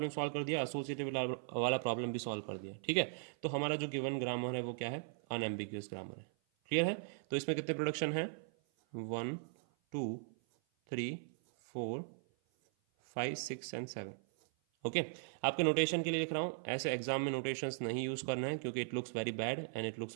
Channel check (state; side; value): silent; left; 52 dB below the other